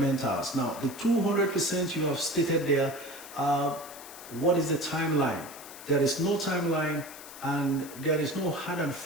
Now, the 200% you have stated there, what is the timeline? There is no timeline and there is no hard and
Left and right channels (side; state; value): left; noise; hiss, 15 dB below the sound